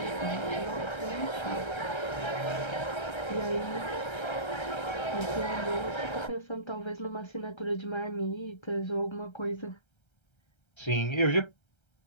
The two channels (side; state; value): right; late; 1.3 ms